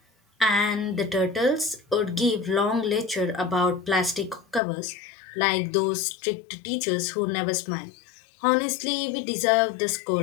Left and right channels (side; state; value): right; drops out; at 4.6 s